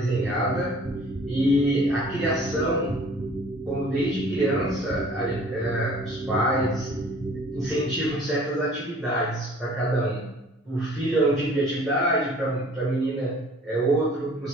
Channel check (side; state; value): both; normal; correlation 0.51